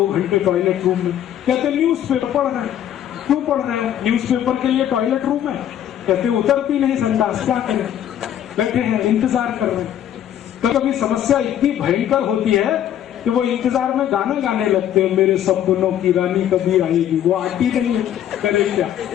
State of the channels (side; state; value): right; quieter; 10.7 dB